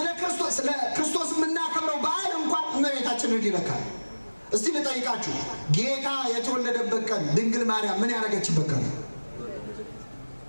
ክርስቶስ የምናከብረው በዓል እንኳን እመቤታችንን ይነካል። እስቲ ልጠይቃችሁ፣ ጌታ የተወለደበት ቀን ድንግል ማርያም ምን ያደረገችበት ቀን?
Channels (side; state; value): both; inverted; correlation -1.00